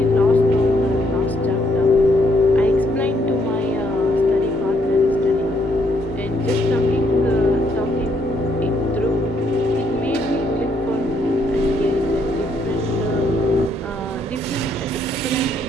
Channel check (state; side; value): normal; both; correlation 0.72